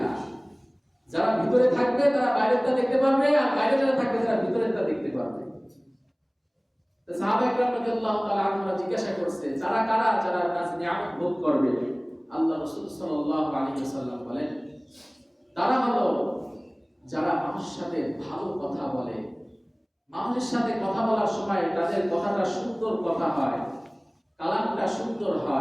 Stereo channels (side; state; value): both; identical; correlation 1.00